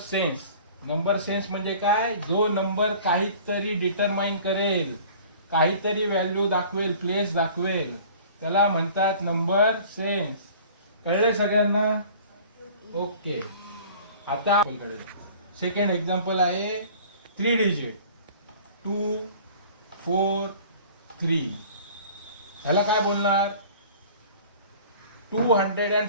नंबर सेन्स म्हणजे काय? जो नंबर काहीतरी डिटरमाइन करेल, काहीतरी व्हॅल्यू दाखवेल, प्लेस दाखवेल, त्याला म्हणतात नंबर सेन्स. कळलंय सगळ्यांना? ओके. आता सेकंड एक्झाम्पल आहे 3 डिजिट 2, 4, 3. ह्याला काय बोलणार?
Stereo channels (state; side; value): inverted; both; correlation -0.47